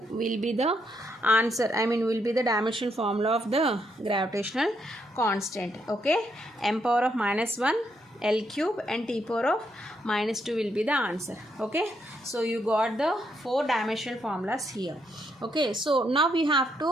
will be the answer, will be the dimensional formula of the gravitational constant. Okay, m power of minus 1 L cube and T power of minus 2 will be the answer. Okay, so you got the 4 dimensional formulas here. Okay, so now we have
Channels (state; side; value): normal; both; correlation 0.77